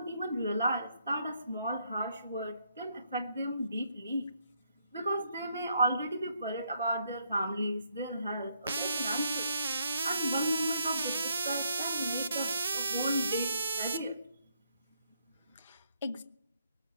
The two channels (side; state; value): both; inverted; correlation -0.74